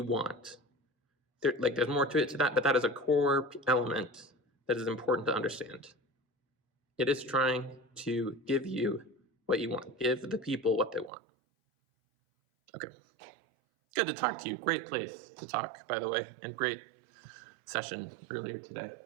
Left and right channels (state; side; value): drops out; left; at 11.1 s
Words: want. There's more to it to that, but that is a core element that is important to understand. It is trying to give you what you want, give the people what they want. Okay, good to talk to you. Great place to talk, by the way, and great session earlier today.